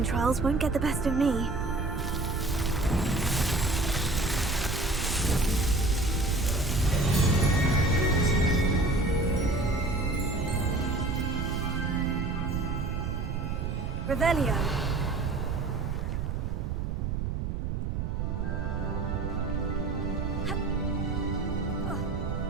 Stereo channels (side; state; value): right; noise; rumble, 1 dB below the sound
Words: trials won't get the best of me. Revelio.